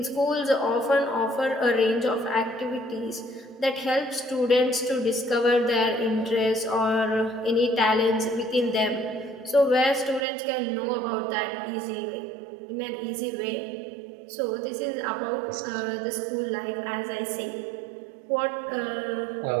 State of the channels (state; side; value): drops out; left; at 10.2 s